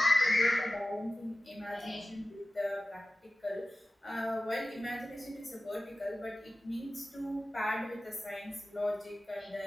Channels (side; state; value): both; normal; correlation 0.95